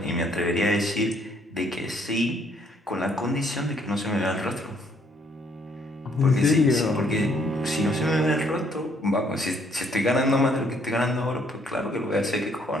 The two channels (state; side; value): normal; both; correlation 0.66